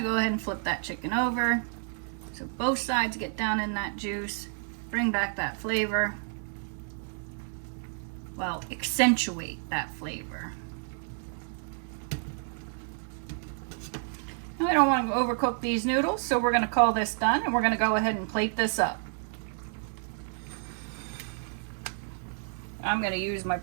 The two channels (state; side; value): silent; left; 58 dB below the other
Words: go ahead and flip that chicken over so both sides get down in that juice, bring back that flavor. Well, accentuate that flavor. Now, I don't want to overcook these noodles, so we're going to call this done and we're going to go ahead and plate this up. I'm going to use my